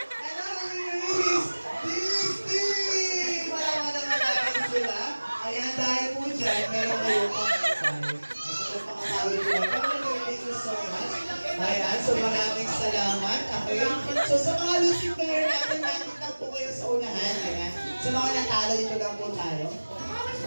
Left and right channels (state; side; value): inverted; both; correlation -1.00